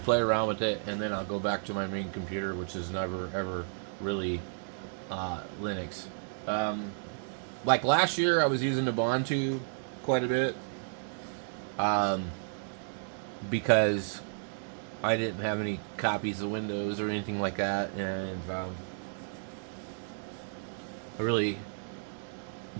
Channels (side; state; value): left; silent; digital silence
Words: around with it, and then I'll go back to my main computer, which is never ever really Linux. Um, like last year, I was using Ubuntu quite a bit um, because I didn't have any copies of Windows or anything like that, and I really